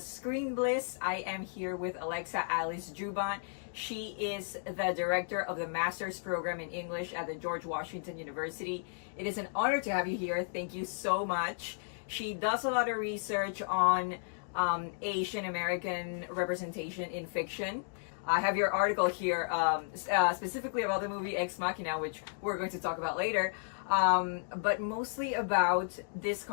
Screenbliss. I am here with Alexa Alice Joubin. She is the director of the Master's Program in English at the George Washington University. It is an honor to have you here. Thank you so much. She does a lot of research on Asian American representation in fiction. I have your article here specifically about the movie Ex Machina, which we're going to talk about later, but mostly about this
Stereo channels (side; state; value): right; silent; digital silence